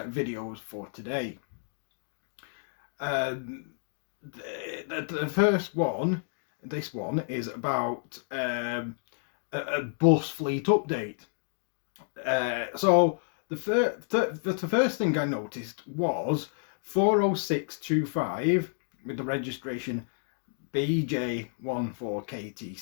for today. The first one, this one, is about a bus fleet update. So the first thing I noticed was 40625 with the registration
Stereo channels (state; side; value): silent; right; digital silence